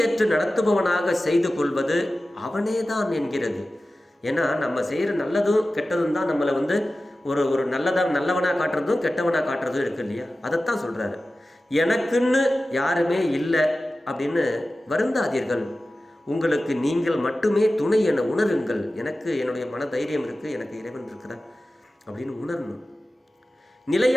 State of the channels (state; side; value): normal; both; correlation 0.95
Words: நடத்துபவனாக செய்து கொள்வது அவனேதான் என்கிறது. ஏன்னா நம்ம செய்கிற நல்லதும் கெட்டதும் தான் நம்மளை வந்து ஒரு நல்லவனாக காட்டுறதும் கெட்டவனாக காட்டுறதும் இருக்கு இல்லையா? அதைத்தான் சொல்கிறாரு. எனக்குன்னு யாருமே இல்லை அப்படின்னு வருந்தாதீர்கள், உங்களுக்கு நீங்கள் மட்டுமே துணை என உணருங்கள். எனக்கு என்னுடைய மன தைரியம் இருக்குது, எனக்கு இறைவன் இருக்கிறார் அப்படின்னு உணரணும்.